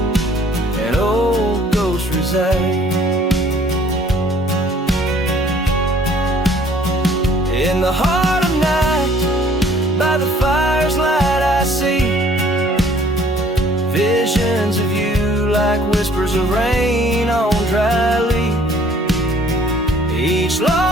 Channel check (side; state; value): both; normal; correlation 0.57